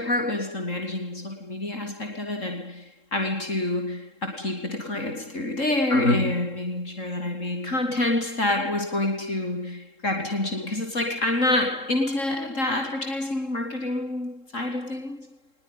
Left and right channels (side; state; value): right; late; 3.7 ms